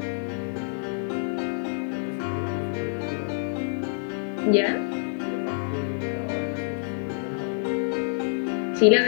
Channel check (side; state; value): right; silent; digital silence